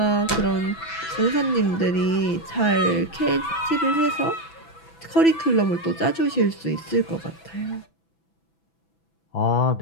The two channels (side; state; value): right; late; 6.0 ms